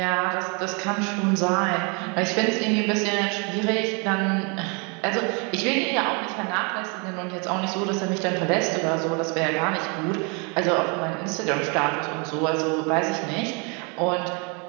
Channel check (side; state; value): left; quieter; 33.1 dB